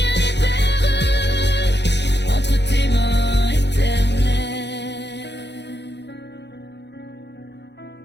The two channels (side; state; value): right; late; 0.50 ms